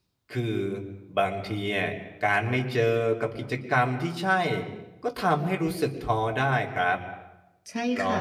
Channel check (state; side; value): identical; both; correlation 1.00